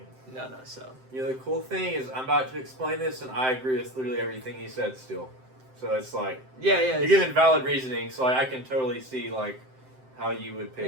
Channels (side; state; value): left; late; 7.7 ms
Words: No. So You know, the cool thing is I'm about to explain this, and I agree with literally everything he said still. So it's like Yeah, you're giving valid reasoning. So like, I can totally see like how you would pick